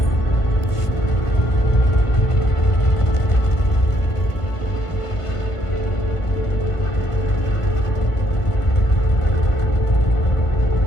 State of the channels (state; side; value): late; right; 1.5 ms